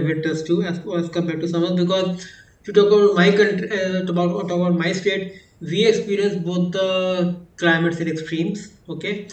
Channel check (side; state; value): both; identical; correlation 1.00